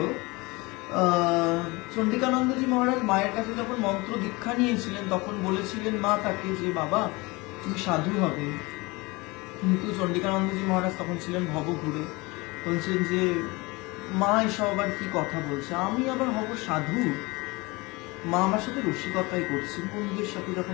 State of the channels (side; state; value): right; quieter; 24.4 dB